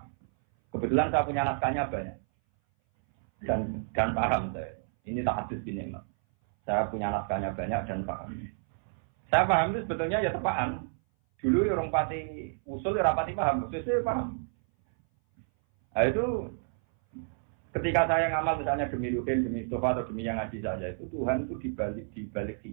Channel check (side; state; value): left; silent; 58 dB below the other